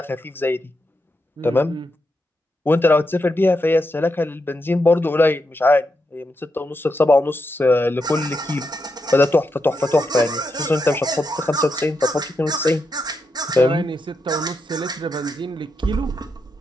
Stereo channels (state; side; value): normal; both; correlation 0.84